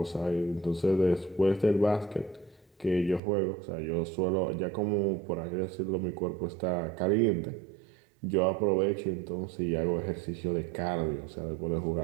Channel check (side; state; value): left; drops out; at 3.2 s